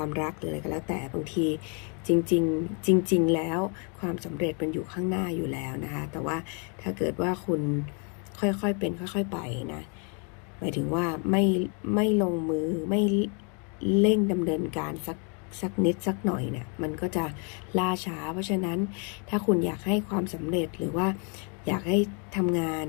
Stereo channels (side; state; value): right; quieter; 37.6 dB